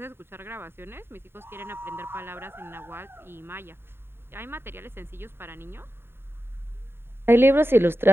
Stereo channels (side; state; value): left; late; 0.11 ms